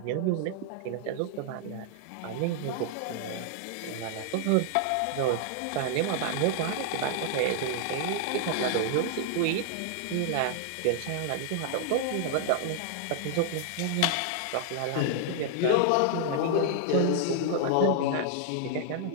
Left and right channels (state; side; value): different; both; correlation 0.00